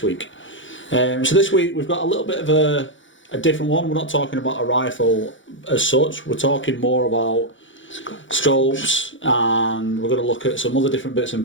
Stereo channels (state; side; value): late; right; 0.56 ms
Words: week. So this week we've got a little bit of a different one. We're not talking about a rifle as such, we're talking more about scopes, and we're going to look at some other different bits and